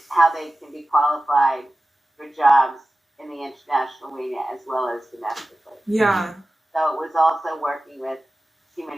how they can be qualified for jobs in the international arena as well as domestically. Yeah. So it was also working with human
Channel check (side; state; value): both; normal; correlation 0.95